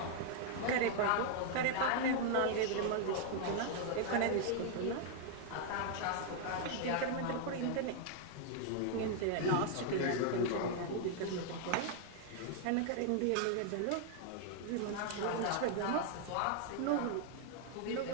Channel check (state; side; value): different; both; correlation 0.00